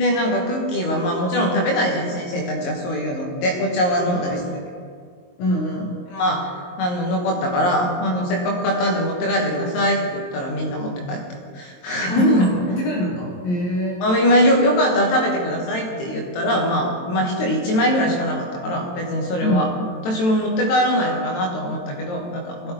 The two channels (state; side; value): late; right; 22 ms